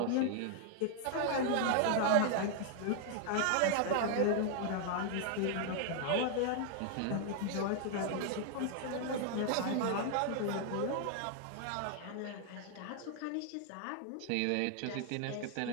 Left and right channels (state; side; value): different; both; correlation 0.00